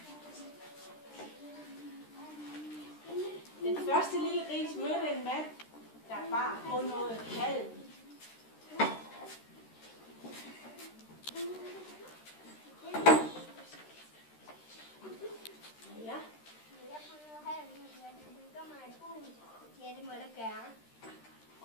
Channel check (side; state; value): right; late; 13 ms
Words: Den første lille gris mødte en mand, der bar på noget halm. Ja. Ja, det må du gøre.